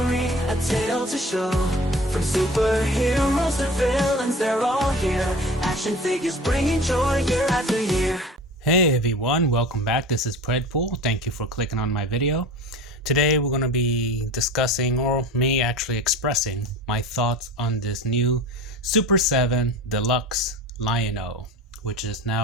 a tale to show. From superheroes to villains, they're all here. Action figures bringing joy year after year. Hey everyone, welcome back. This is Predpool. Thank you for clicking on my video. Today we're going to be discussing, or me actually expressing, my thoughts on this new Super 7 Deluxe Lion-O, which is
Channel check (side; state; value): both; normal; correlation 0.38